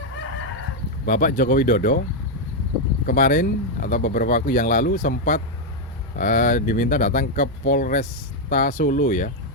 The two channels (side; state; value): both; normal; correlation 0.01